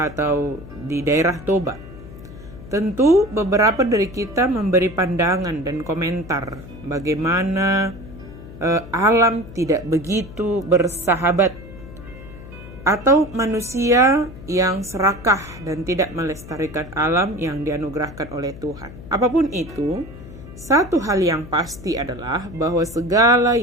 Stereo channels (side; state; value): left; noise; hum, 15 dB below the sound